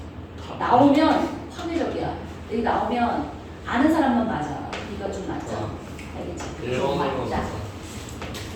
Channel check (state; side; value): identical; both; correlation 1.00